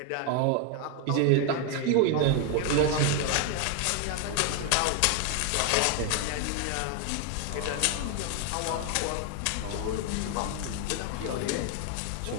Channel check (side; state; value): both; different; correlation 0.00